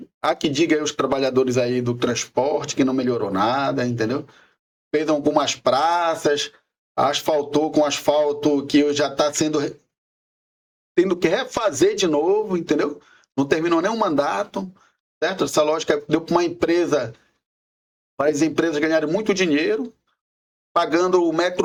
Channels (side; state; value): both; identical; correlation 1.00